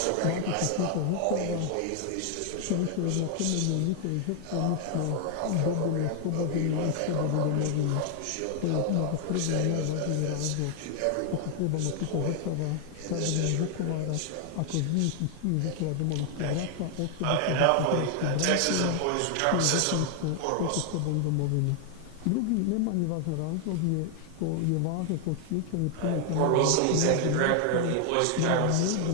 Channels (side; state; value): both; different; correlation 0.00